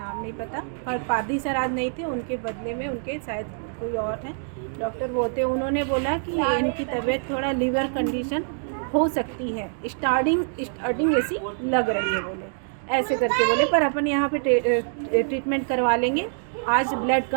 नहीं पता, और पादी सर आज नहीं थे, उनके बदले में उनके शायद कोई और हैं डॉक्टर वो थे। उन्होंने बोला कि इनकी तबीयत थोड़ा लीवर कंडीशन हो सकती है, स्टार्टिंग ऐसी लग रही है बोले, ऐसे करके बोले, पर अपन यहाँ पे ट्रीटमेंट करवा लेंगे। आज ब्लड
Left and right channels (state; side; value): silent; left; digital silence